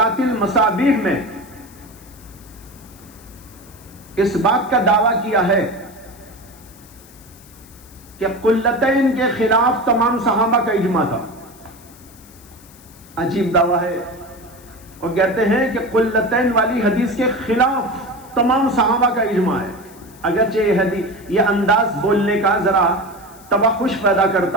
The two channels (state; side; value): noise; left; hiss, 24 dB below the sound